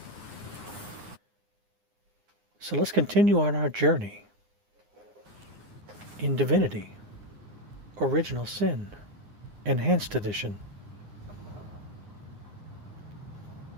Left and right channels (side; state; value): left; late; 9.7 ms